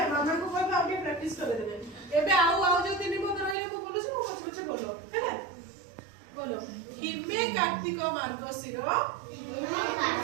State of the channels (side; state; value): left; drops out; at 3.6 s